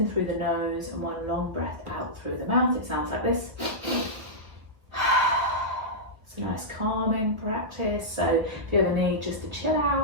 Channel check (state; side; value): late; left; 1.1 ms